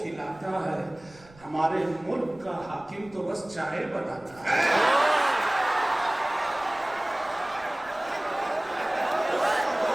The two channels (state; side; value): noise; right; rumble, 25 dB below the sound